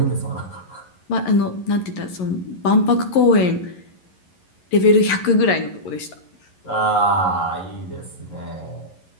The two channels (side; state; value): right; late; 11 ms